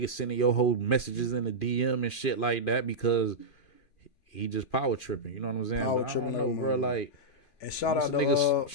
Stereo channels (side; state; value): right; late; 2.5 ms